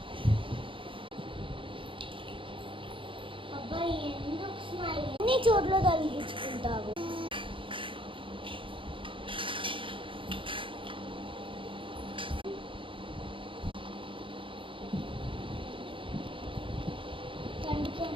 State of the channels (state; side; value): late; left; 0.25 ms